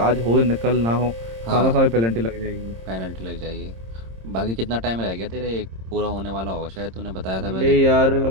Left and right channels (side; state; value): left; late; 26 ms